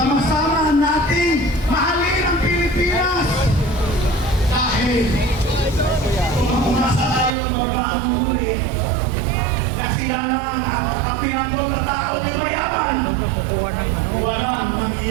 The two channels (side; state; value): left; drops out; at 7.4 s